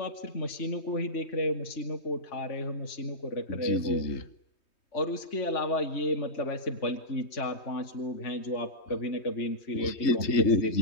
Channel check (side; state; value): right; late; 3.2 ms